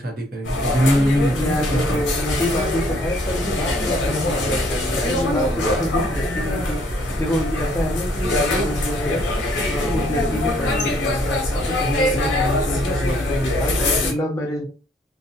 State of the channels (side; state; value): both; normal; correlation 0.64